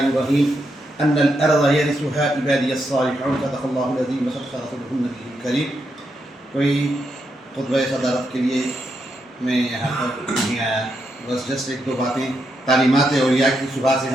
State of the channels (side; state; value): both; normal; correlation 0.82